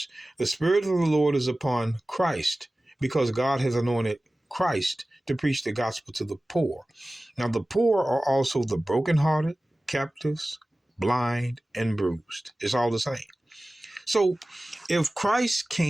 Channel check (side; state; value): both; normal; correlation 0.97